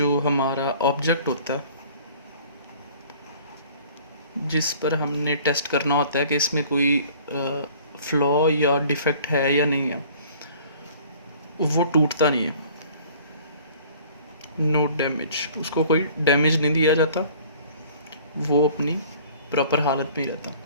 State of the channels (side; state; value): both; inverted; correlation -0.51